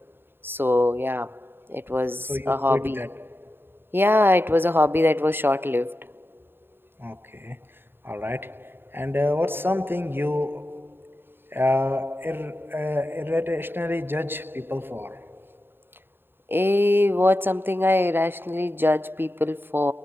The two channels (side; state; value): left; late; 0.10 ms